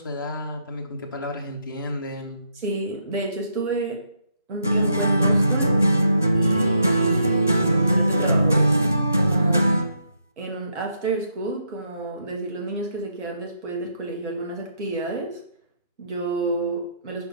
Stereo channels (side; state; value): both; inverted; correlation -0.76